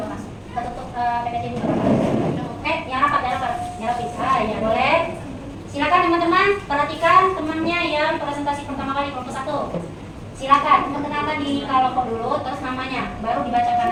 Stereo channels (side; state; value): both; identical; correlation 1.00